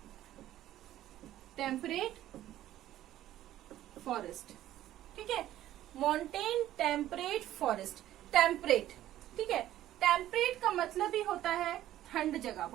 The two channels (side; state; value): left; quieter; 13.3 dB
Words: टेम्परेट फॉरेस्ट, ठीक है। माउंटेन टेम्परेट फॉरेस्ट, टेम्परेट, ठीक है। टेम्परेट का मतलब ही होता है ठंड जगह,